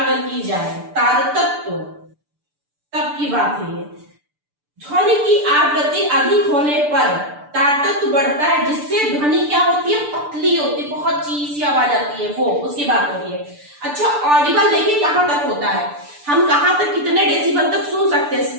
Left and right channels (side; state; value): left; late; 6.8 ms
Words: की जाए, तारतत्व तब की बात है ये। ध्वनि की आवृत्ति अधिक होने पर तारतत्व बढ़ता है, जिससे ध्वनि क्या होती है, पतली होती है, बहुत चीज सी आवाज आती है, वो उसकी बात हो रही है। अच्छा ऑडिबल देखिए कहां तक होता है, हम कहां तक कितने डेसिबल तक सुन सकते हैं,